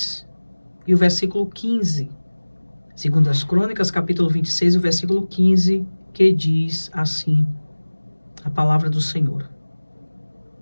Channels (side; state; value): both; inverted; correlation -1.00